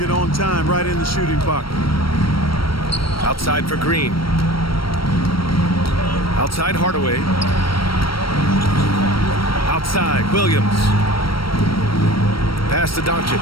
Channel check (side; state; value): right; late; 0.74 ms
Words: on time, right in the shooting pocket. Outside for Green. Outside Hardaway. Outside Williams. Pass to Doncic.